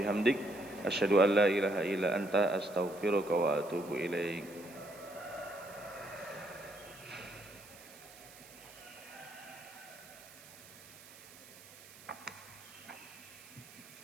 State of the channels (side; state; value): right; noise; hiss, 19 dB below the sound